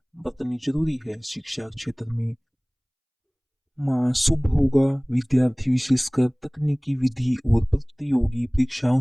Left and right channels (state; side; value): identical; both; correlation 1.00